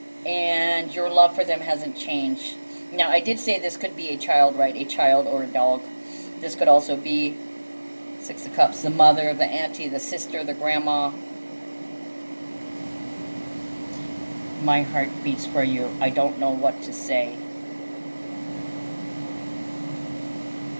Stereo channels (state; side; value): inverted; both; correlation -1.00